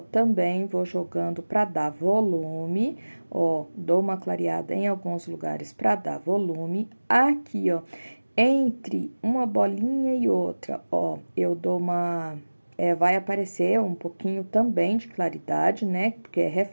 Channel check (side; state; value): both; inverted; correlation -1.00